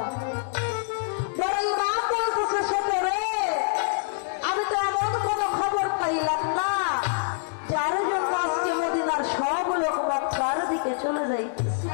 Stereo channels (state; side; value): silent; right; 61 dB below the other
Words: বড় ইমাম বলতেছে ছোট রে আমি তো এমন কোনো খবর পাইলাম না যার জন্য আজকে মদিনার সব লোক মক্কার দিকে চলে যাইতেছে